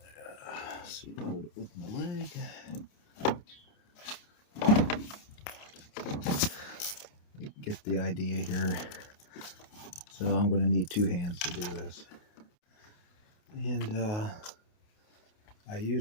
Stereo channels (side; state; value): right; late; 28 ms